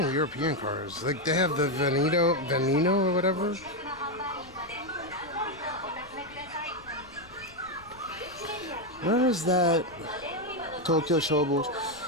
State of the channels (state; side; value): noise; left; rumble, 23 dB below the sound